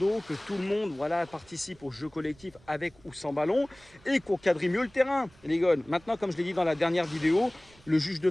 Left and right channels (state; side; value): noise; right; rumble, 27 dB below the sound